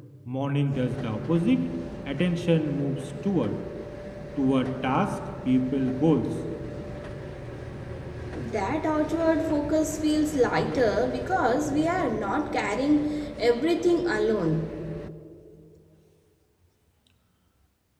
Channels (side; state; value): both; identical; correlation 1.00